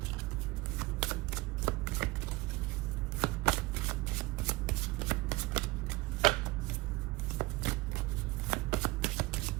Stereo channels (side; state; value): left; quieter; 21.3 dB